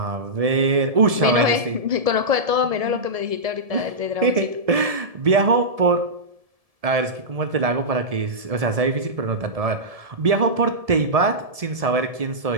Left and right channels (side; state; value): left; late; 1.7 ms